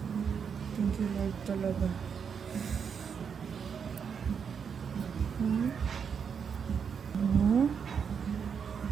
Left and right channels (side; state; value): left; quieter; 6.8 dB